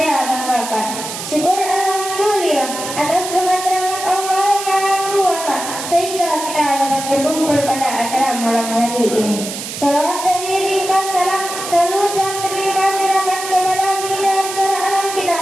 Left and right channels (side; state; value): right; noise; hiss, 7 dB below the sound